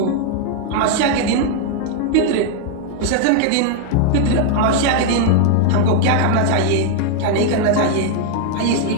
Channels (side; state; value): both; different; correlation -0.01